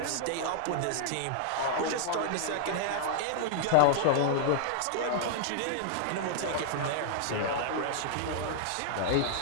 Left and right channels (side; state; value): both; different; correlation -0.01